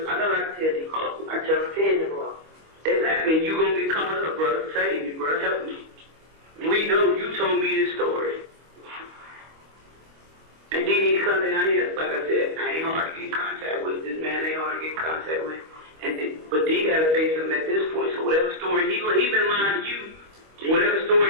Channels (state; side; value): late; left; 25 ms